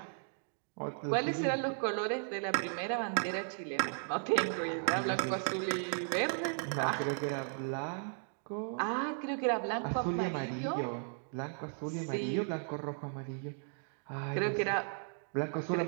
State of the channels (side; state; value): left; silent; 54 dB below the other